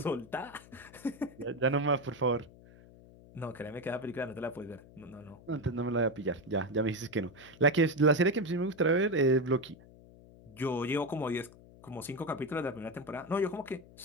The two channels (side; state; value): left; noise; hum, 22 dB below the sound